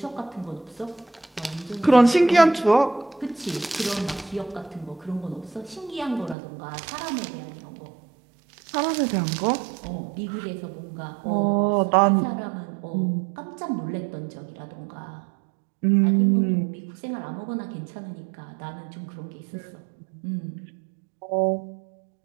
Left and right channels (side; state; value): left; drops out; at 6.4 s